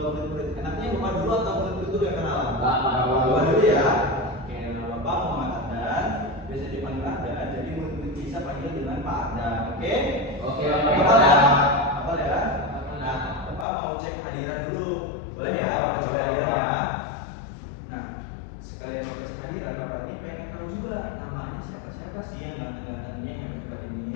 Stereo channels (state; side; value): drops out; right; at 13.7 s